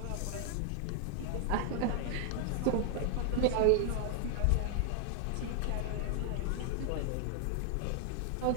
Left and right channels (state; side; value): different; both; correlation 0.00